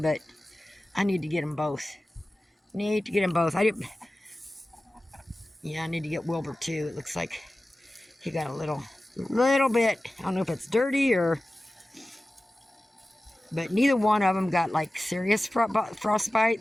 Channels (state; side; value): normal; both; correlation 0.96